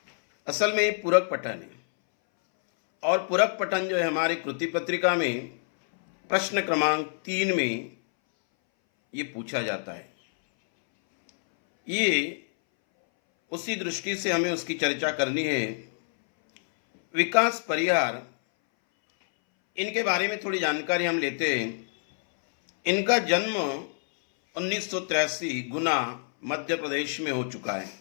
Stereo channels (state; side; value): silent; right; 60 dB below the other